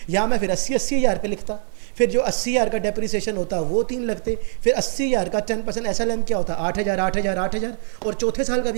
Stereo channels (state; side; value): silent; left; 59 dB below the other